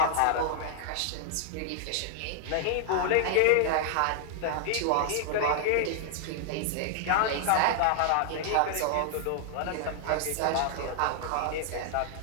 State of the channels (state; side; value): different; both; correlation -0.01